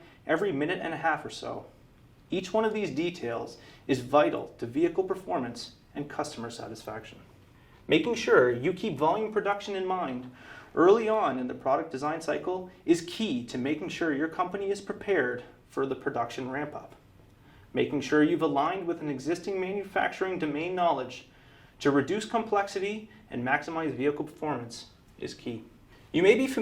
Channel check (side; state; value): both; identical; correlation 1.00